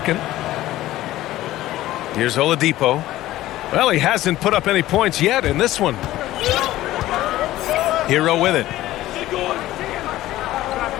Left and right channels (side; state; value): right; quieter; 15.4 dB